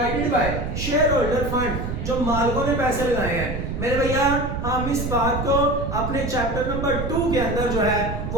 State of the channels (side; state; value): right; noise; rumble, 4 dB below the sound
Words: by shareholder fund जो मालिकों ने पैसे लगाए हैं। मेरे भैया हम इस बात को अपने चैप्टर नंबर 2 के अंदर जो है